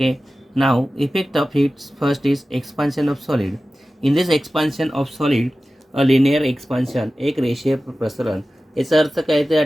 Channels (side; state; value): both; normal; correlation 0.95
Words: Now effect of heat first is expansion of solid. In this expansion of solid, a linear expansion, एक रेषीय प्रसरण. याचा अर्थ काय, त्या